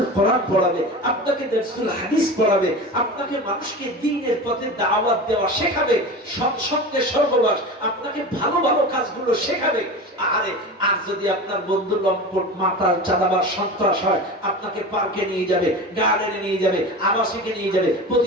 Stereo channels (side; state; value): both; normal; correlation 0.30